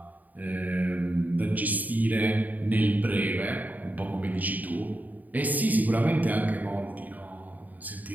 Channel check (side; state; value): left; late; 0.080 ms